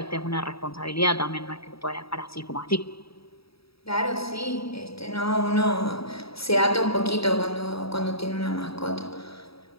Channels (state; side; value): late; right; 0.76 ms